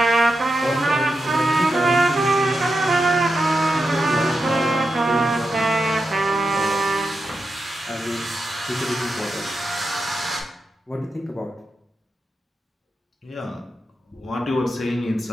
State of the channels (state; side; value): normal; both; correlation 0.88